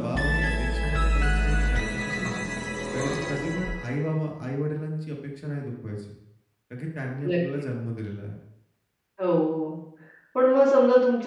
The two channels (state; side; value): identical; both; correlation 1.00